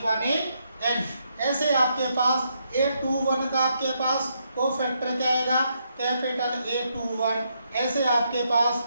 ऐसे आपके पास a21 का आपके पास कोफैक्टर क्या आएगा, कैपिटल A21, ऐसे आपके पास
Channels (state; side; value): inverted; both; correlation -0.77